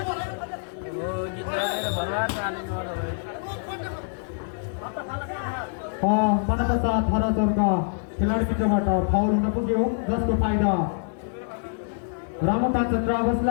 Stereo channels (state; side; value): silent; right; 61 dB below the other